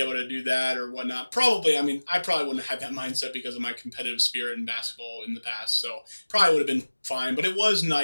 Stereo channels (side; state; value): both; inverted; correlation -1.00